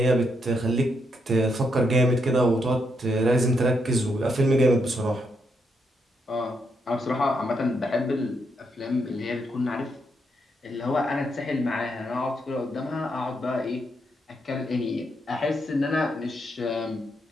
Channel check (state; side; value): normal; both; correlation 0.79